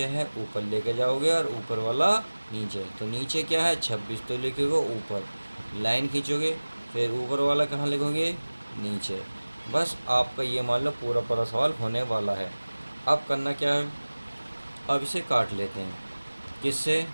है ऊपर लेके जाओगे और ऊपर वाला नीचे। तो नीचे क्या है 26, तो लिखोगे ऊपर, लाइन खींचोगे, फिर ऊपर वाला कहाँ लिखोगे, नीचे। बस आपका ये मान लो पूरा पूरा सवाल होने वाला है। अब करना क्या है, अब इसे काट लेते हैं। किससे,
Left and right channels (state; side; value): inverted; both; correlation -1.00